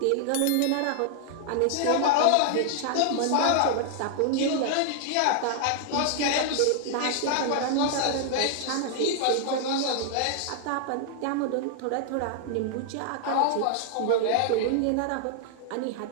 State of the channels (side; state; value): both; different; correlation -0.01